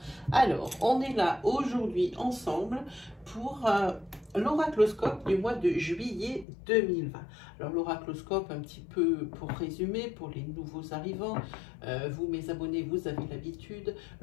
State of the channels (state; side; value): drops out; right; at 6.5 s